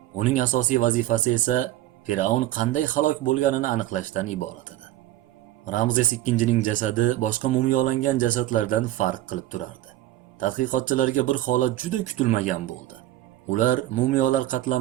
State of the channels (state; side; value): quieter; left; 14.6 dB